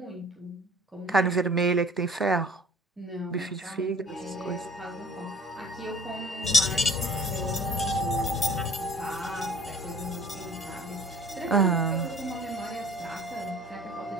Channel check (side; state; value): both; normal; correlation 0.50